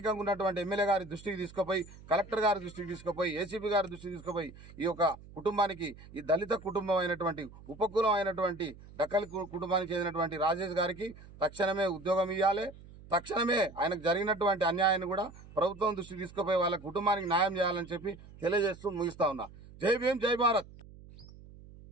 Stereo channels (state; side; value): noise; right; hum, 19 dB below the sound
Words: ఉన్నటువంటి ఎమ్మెల్యే గారి దృష్టికి తీసుకుపోయి, కలెక్టర్ గారి దృష్టికి తీసుకుపోయి, ACP గారి దృష్టికి తీసుకుపోయి ఈ యొక్క కుటుంబానికి, ఈ దళిత కుటుంబం అయినటువంటి ఉపకులం అయినటువంటి డక్కలి కుటుంబానికి చెందినటువంటి రాజేష్ గారికి తక్షణమే ఉద్యోగం ఇవ్వాలి. తక్షణమే ఆయనకు జరిగినటువంటి అన్యాయాన్ని కూడా ప్రభుత్వం దృష్టికి తీసుకుపోయి వాళ్ళ కుటుంబానికి న్యాయం చేయాలని చెప్పి తెలియజేస్తూ ముగిస్తా ఉన్నా. జై భీమ్, జై భారత్.